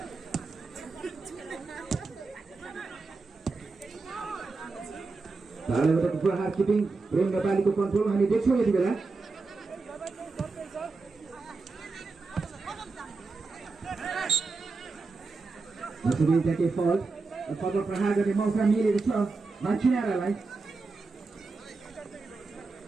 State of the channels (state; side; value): quieter; left; 4.0 dB